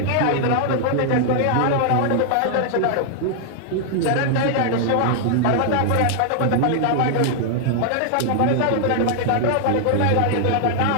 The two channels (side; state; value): both; different; correlation 0.00